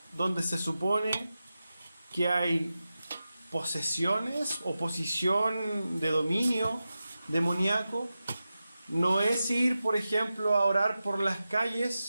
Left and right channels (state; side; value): inverted; both; correlation -0.92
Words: donde se supone que hay posesiones, oposición de dominio demoníaco. No es ir, por ejemplo, a orar por las